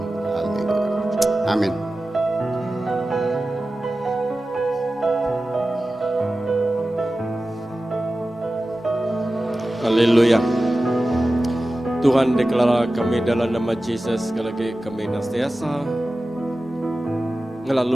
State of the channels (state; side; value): normal; both; correlation 0.95